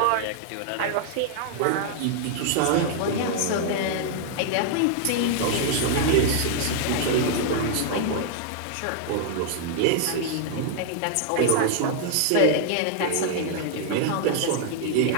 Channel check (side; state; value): both; different; correlation 0.00